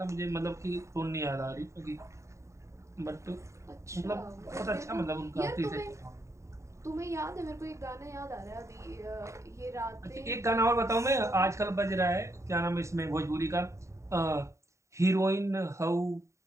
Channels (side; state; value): left; late; 0.14 ms